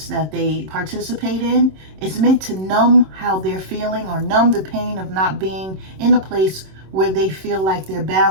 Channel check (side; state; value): left; late; 26 ms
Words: that they participate in is meant to numb how they're feeling, or numb the pain of not being in a place where they feel like they're